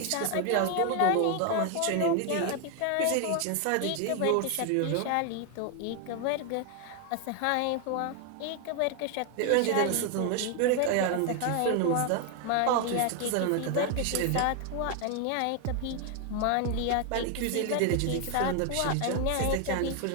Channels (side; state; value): both; different; correlation 0.01